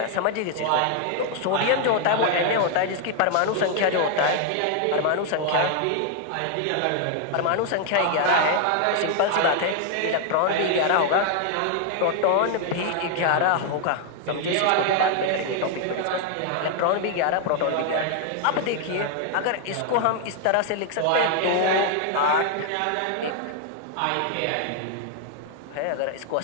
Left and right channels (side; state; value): both; different; correlation 0.00